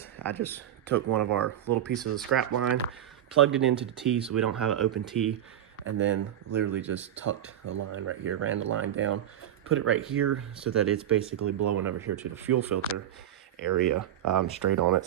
I just took one of our little pieces of scrap line, plugged it into the T so we don't have an open T, and then literally just tucked the line right here, ran the line down, put it right here so that it's basically blowing over here to the fuel filter area, straight on it.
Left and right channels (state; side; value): quieter; left; 11.1 dB